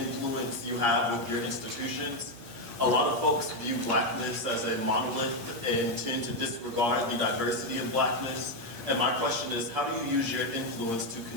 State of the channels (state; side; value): late; left; 8.5 ms